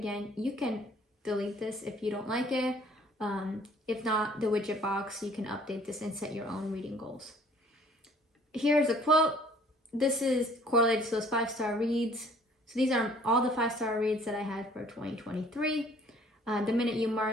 you can delete this if you don't like it. If not, the widget box, you can update this and set your own reading goals. Here's a quote. This is correlated to those 5-star reads. So these are all the 5-star reads that I had for 2023. The minute you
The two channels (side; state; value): both; normal; correlation 0.56